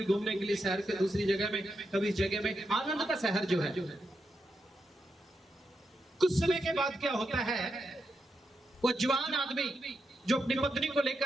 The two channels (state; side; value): normal; both; correlation 0.85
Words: घूमने के लिए शहर के दूसरी जगह में, कभी जगह में, आनंद का शहर जो है। कुछ समय के बाद क्या होता है, वो जवान आदमी जो अपनी पत्नी को